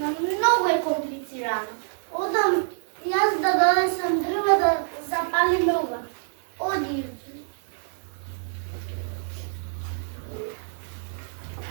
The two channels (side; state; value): left; silent; digital silence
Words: многу е комплицирано. Одам јас да донесам дрва да запалиме ова. Оди.